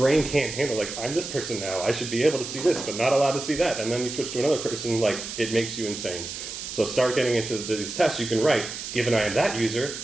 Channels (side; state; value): right; noise; hiss, 8 dB below the sound